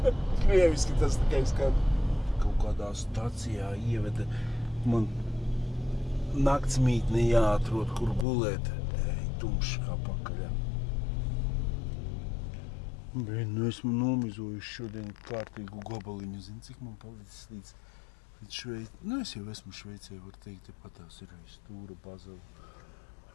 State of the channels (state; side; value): drops out; right; at 8.2 s